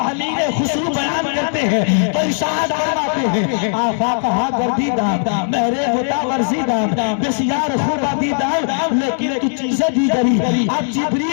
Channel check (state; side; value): silent; right; digital silence